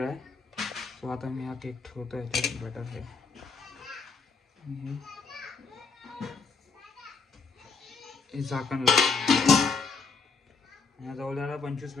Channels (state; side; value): quieter; right; 4.9 dB